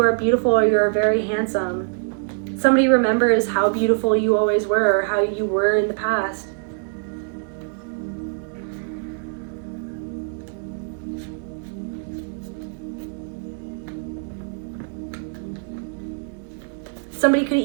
are beautiful or you are very handsome. Somebody remembers how beautiful you always were or how you were in the past. Somebody could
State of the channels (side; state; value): left; silent; 60 dB below the other